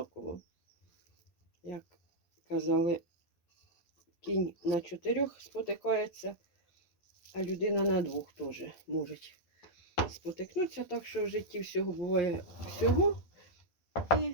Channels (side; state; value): right; late; 12 ms